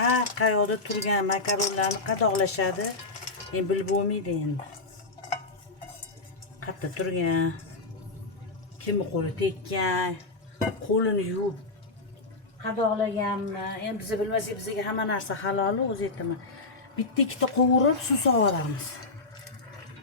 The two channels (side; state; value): right; quieter; 3.5 dB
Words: qayoqda turgan makaronlarni qadoqlashadi. Men bilib bo'lmaydi endi. Qayerda turgan, kimni qo'li tekkan, qo'lini yuvib qadoqlaganmi? Endi biz bilmasak, bizga hamma narsa halol, o'zi aytaman. Bitta ikkita qovurib suv sovoramiz.